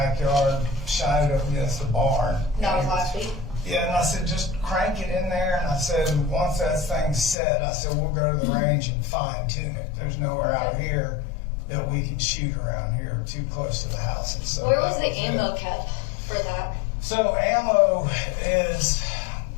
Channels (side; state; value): right; drops out; at 7.4 s